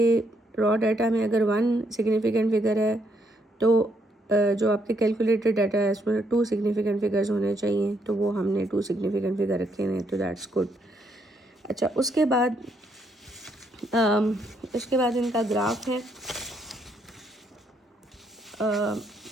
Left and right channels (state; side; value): normal; both; correlation 0.74